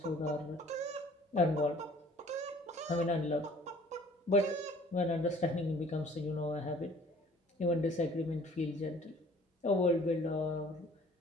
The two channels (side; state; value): both; normal; correlation 0.53